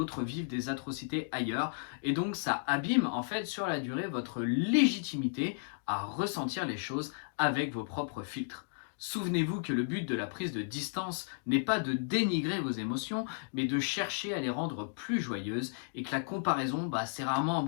vivent des atrocités ailleurs. Et donc ça abîme en fait sur la durée votre légitimité à ressentir les choses avec vos propres filtres. Souvenez-vous que le but de la prise de distance n'est pas de dénigrer vos émotions, mais de chercher à les rendre plus joyeuses, et que la comparaison, c'est rarement un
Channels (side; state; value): right; silent; digital silence